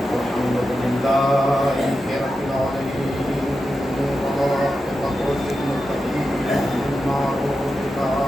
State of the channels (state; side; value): normal; both; correlation 0.90